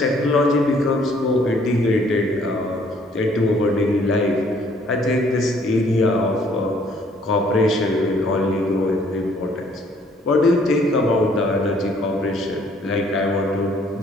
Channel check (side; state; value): both; normal; correlation 0.62